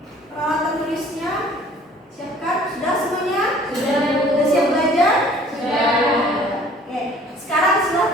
Peralatan tulisnya siapkan. Sudah semuanya? Sudah, Bu. Sudah siap belajar? Sudah. Oke, sekarang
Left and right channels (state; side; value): normal; both; correlation 0.52